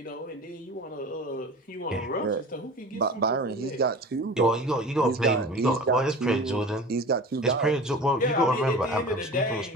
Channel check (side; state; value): both; normal; correlation 0.37